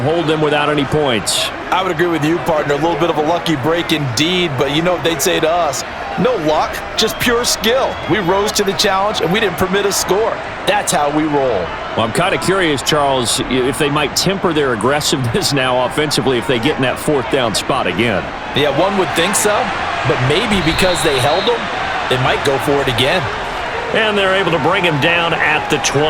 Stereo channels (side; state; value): both; identical; correlation 1.00